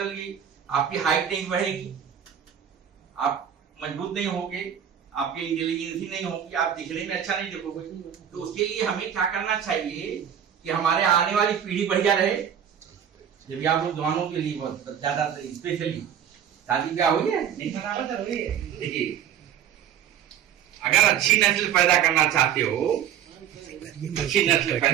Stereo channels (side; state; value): left; quieter; 9.1 dB